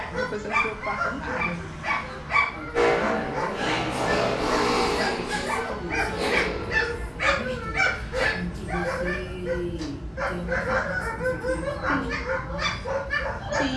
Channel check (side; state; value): both; identical; correlation 1.00